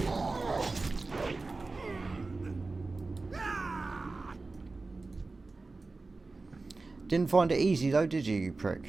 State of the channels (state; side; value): quieter; left; 3.6 dB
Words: Didn't find it easy though, did you, you prick?